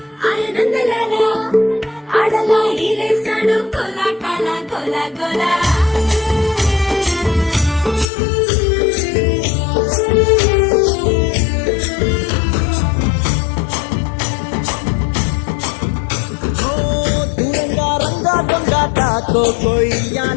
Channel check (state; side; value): drops out; right; at 8.1 s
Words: ఆనందలాల ఆడలా ఈలేస్తాడు కోలాటాల గోలా గోలా దూరంగా రంగా దొంగ